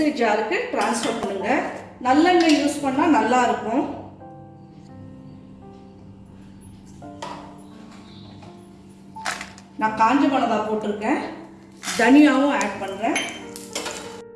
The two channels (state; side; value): identical; both; correlation 1.00